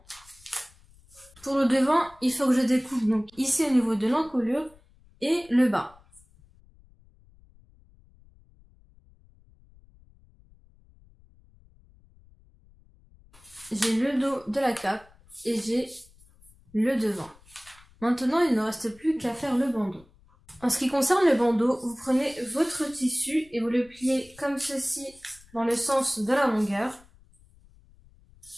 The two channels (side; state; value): left; noise; rumble, 28 dB below the sound